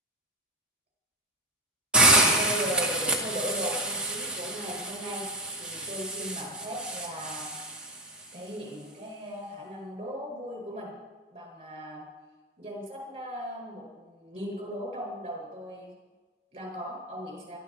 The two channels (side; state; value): both; normal; correlation 0.07